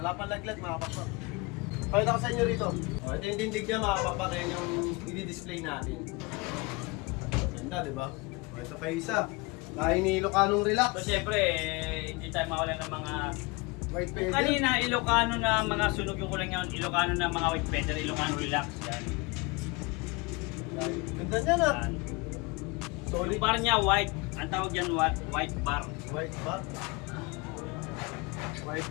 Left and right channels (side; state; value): right; quieter; 26.1 dB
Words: pang laglag mga pakpak. Pakita ko sa inyo rito. Ito yung tindig niya mga pakpak, yan yung i-display natin. Ganda, di ba? Ito pa yung isa. Dahil ni Ilocanong relax. So siyempre, hindi tayo mawala ng mga White feather. kanina Ilocano na mga sunog yung kulang yun, Ilocano na mga white feather, Ilocano relax yan. Yan. Ganda niya na. Yan. Solid. Yung bar niya white, ang tawag yan white bar. White bar. White